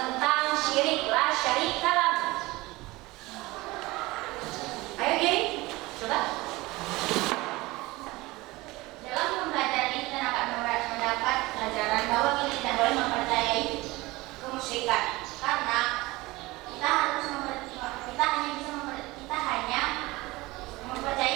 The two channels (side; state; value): left; quieter; 20.9 dB